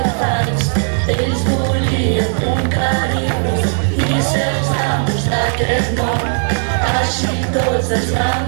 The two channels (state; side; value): silent; left; 62 dB below the other